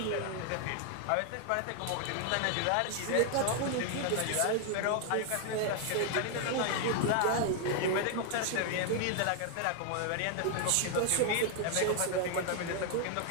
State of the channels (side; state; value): both; different; correlation 0.00